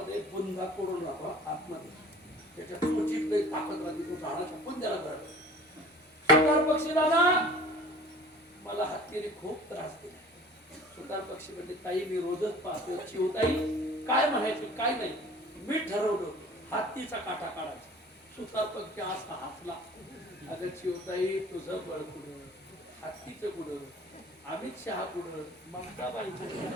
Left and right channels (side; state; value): both; normal; correlation 0.46